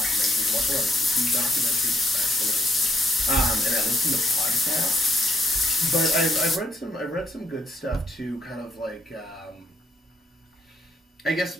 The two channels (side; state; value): both; normal; correlation 0.71